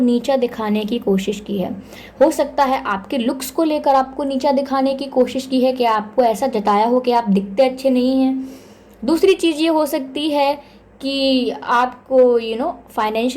दिखाने की कोशिश की है। हो सकता है आपके लुक्स को लेकर आपको नीचा दिखाने की कोशिश की है, कि आपको ऐसा जताया हो कि आप दिखते अच्छे नहीं हैं। दूसरी चीज़ ये हो सकती है कि आपको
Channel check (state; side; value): identical; both; correlation 1.00